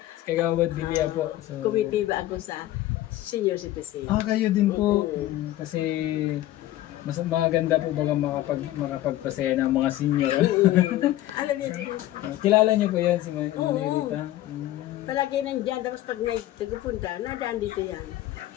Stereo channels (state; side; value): quieter; right; 14.8 dB